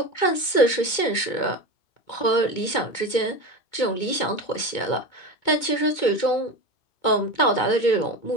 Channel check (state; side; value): late; right; 2.2 ms